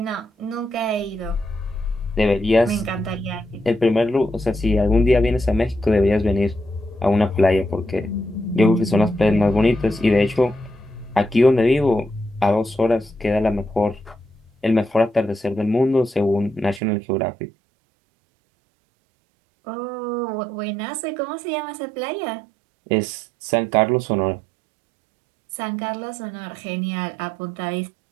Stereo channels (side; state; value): left; drops out; at 16.8 s